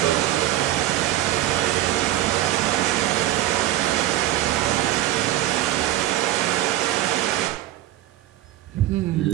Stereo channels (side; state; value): left; quieter; 14.2 dB